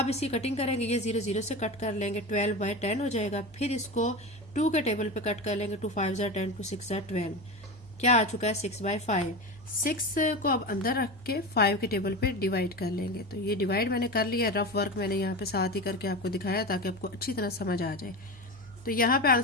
इसकी कटिंग करेंगे, ये 0 0 से कट कर लेंगे, 12/10 हो जाएगा। फिर इसको 2 के टेबल पे कट कर लेंगे, 2 5 ज़ा 10, 2 6 ज़ा 12, क्या आ चुका है 6/5। 6 को अब अंदर रख के 5 के टेबल पे डिवाइड कर लेंगे। तो ये डिवाइड मैंने कर लिया, रफ वर्क मैंने यहाँ पे साथ ही करके आपको दिखाया ताकि आपको अच्छी तरह समझ आ जाए। तो यहाँ पे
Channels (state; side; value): normal; both; correlation 0.24